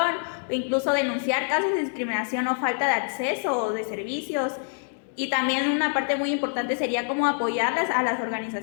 o incluso denunciar casos de discriminación o falta de acceso o de servicios. Y también una parte muy importante sería como apoyarlas a las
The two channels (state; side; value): silent; right; digital silence